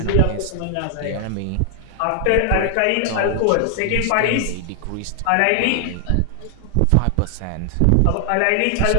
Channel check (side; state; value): both; different; correlation 0.00